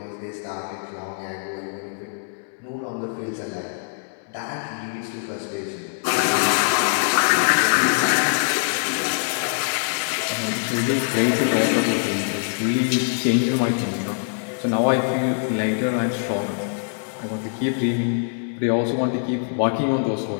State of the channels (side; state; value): right; silent; digital silence